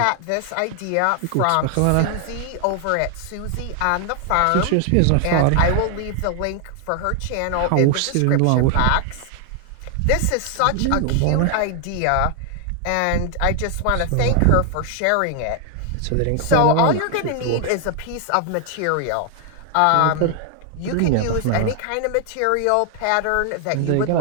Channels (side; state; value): both; different; correlation 0.00